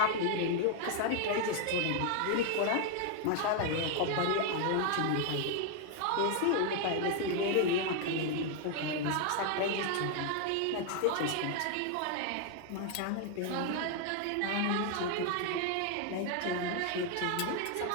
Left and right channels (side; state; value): both; different; correlation 0.00